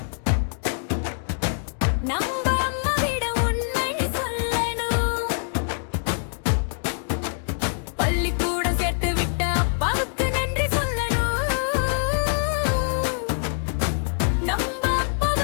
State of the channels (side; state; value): right; silent; digital silence